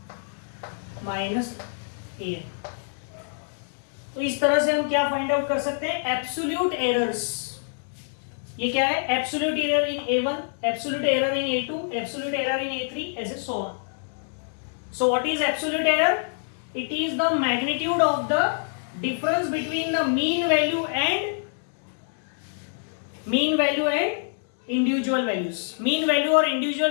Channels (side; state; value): right; silent; digital silence